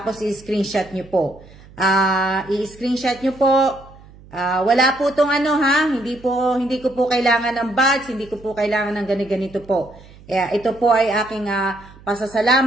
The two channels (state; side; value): noise; right; hum, 22 dB below the sound